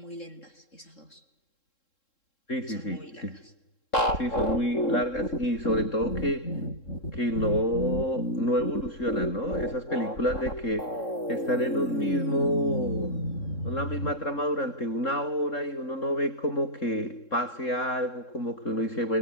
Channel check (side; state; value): right; late; 3.7 ms